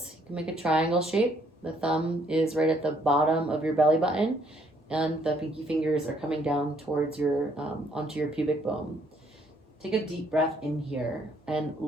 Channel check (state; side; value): normal; both; correlation 0.67